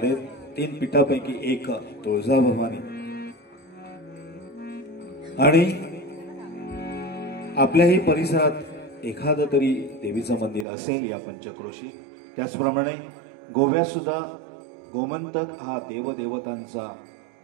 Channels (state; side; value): drops out; left; at 10.7 s